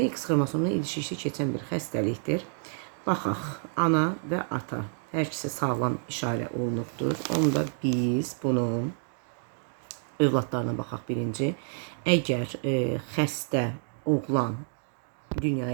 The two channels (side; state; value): left; silent; 55 dB below the other